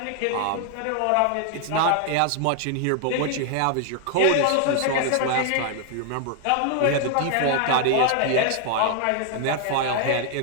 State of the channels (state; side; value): different; both; correlation 0.00